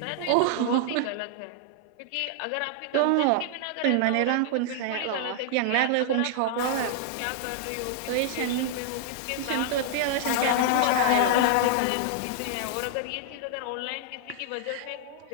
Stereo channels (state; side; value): different; both; correlation -0.01